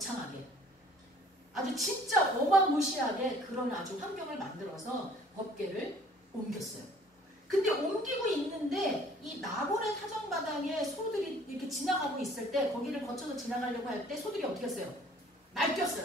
아주 진짜 어마무시하게 그런 아주 환경을 만들어서 법궤를 옮겼어요. 근데 옮기고 있는데 이 나곤의 타작마당에 소들이 이렇게 지나가고 있을 때, 거기를 거쳐서 지나가려고 할 때 소들이 어떻게 했어요?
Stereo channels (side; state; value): both; normal; correlation 0.55